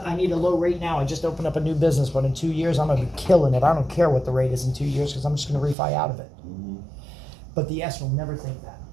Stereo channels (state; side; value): drops out; left; at 5.8 s